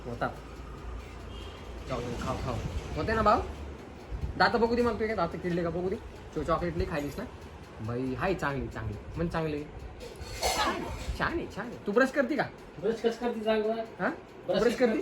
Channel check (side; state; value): both; identical; correlation 1.00